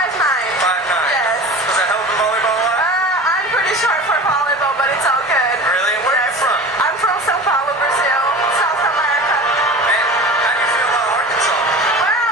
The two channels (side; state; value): both; normal; correlation 0.36